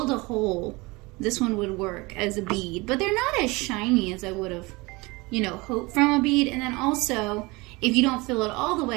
a hole, this one would work as a bead, but they're not as shiny as I would have, you know, hoped from a bead. And then also, if you don't fill it all the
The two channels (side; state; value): left; quieter; 24.3 dB